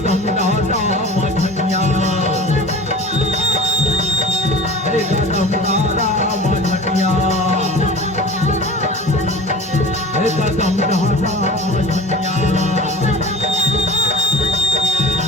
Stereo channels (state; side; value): normal; both; correlation 0.37